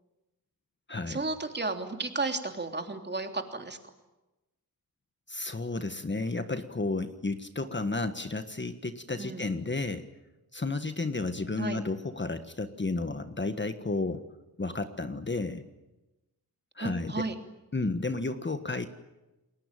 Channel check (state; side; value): normal; both; correlation 0.41